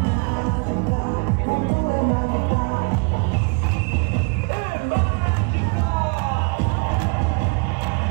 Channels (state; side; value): quieter; left; 35.3 dB